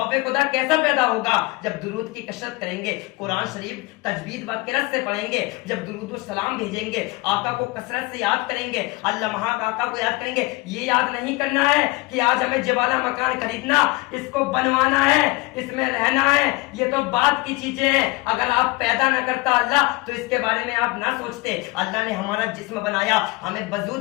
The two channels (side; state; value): right; quieter; 22.9 dB